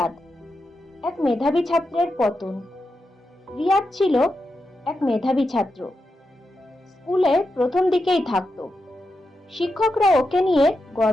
এক মেধাবী ছাত্রের পতন। রিয়াদ ছিল এক মেধাবী ছাত্র। স্কুলে প্রথম দিকেই থাকতো। শিক্ষকরা ওকে নিয়ে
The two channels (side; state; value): both; normal; correlation 0.87